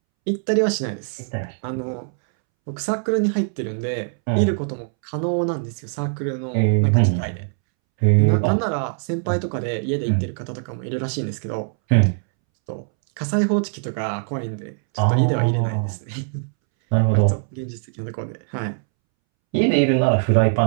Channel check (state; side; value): silent; left; 64 dB below the other